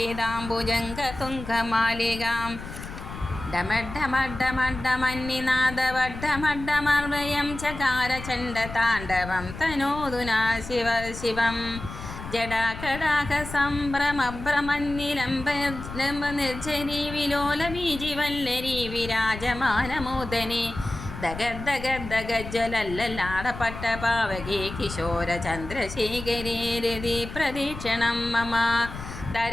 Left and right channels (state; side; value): noise; left; rumble, 10 dB below the sound